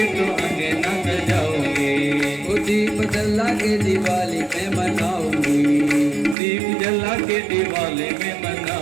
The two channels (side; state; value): left; drops out; at 6.4 s